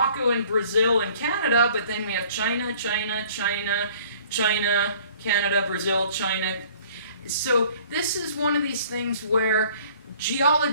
and Brazil and Canada, but then we have China, Canada, Brazil, China. So this is one of these things where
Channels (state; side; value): inverted; both; correlation -0.54